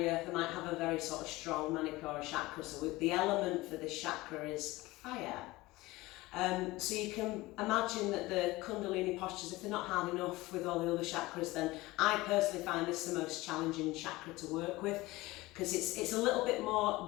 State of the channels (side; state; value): right; quieter; 20.0 dB